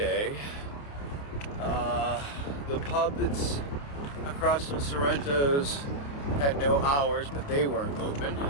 The pub that's across from Sorrento's had no hours, but they weren't open.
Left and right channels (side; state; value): right; late; 28 ms